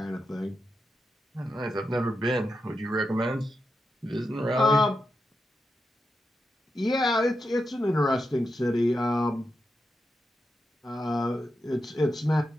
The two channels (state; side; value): normal; both; correlation 0.87